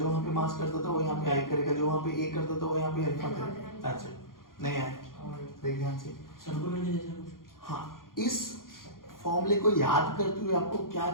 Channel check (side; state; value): right; late; 0.91 ms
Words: वहां पे मास करता था वो यहाँ पे आई करेगा, जो वहां पे ए करता था वो यहाँ पे अल्फा करेगा। That's it. नहीं आया? देख ध्यान से। सर्कुलर के जैसा कुछ। हाँ, इस फॉर्मूले को याद करते हुए आपको क्या